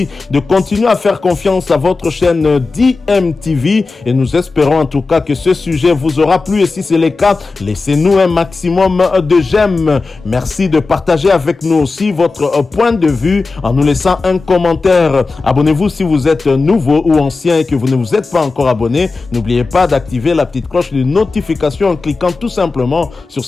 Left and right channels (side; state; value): right; quieter; 3.9 dB